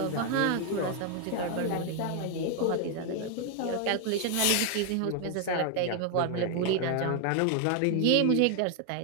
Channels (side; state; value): both; different; correlation 0.01